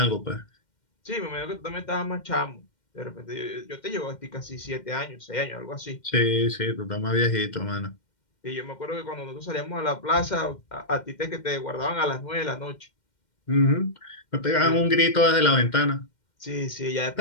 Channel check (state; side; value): late; right; 2.1 ms